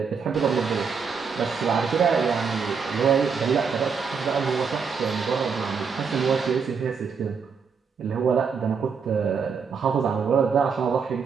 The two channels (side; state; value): left; quieter; 5.8 dB